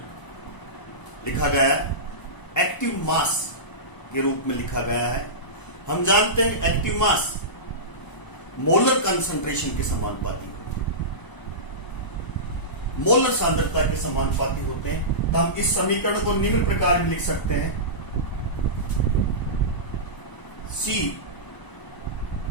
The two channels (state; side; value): late; right; 1.0 ms